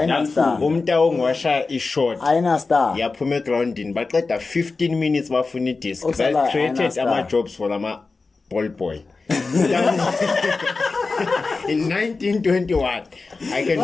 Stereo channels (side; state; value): right; quieter; 4.0 dB